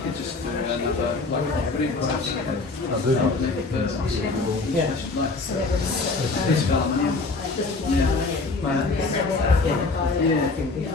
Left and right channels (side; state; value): right; quieter; 3.7 dB